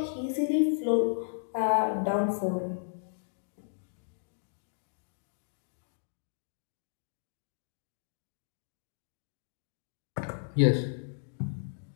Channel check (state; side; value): silent; right; digital silence